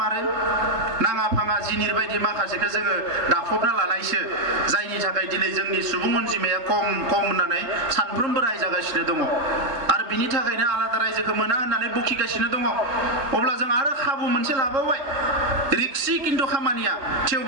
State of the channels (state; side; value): late; left; 3.7 ms